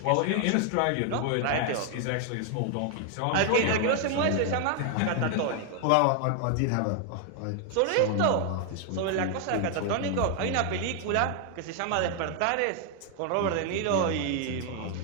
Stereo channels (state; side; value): different; both; correlation 0.00